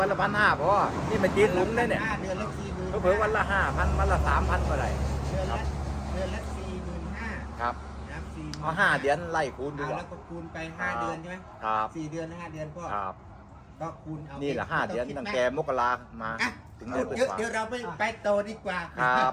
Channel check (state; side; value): identical; both; correlation 1.00